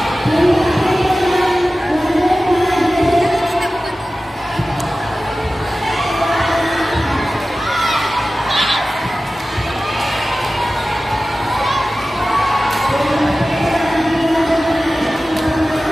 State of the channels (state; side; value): normal; both; correlation 0.96